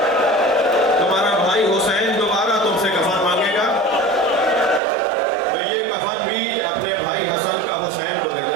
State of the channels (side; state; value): left; drops out; at 4.8 s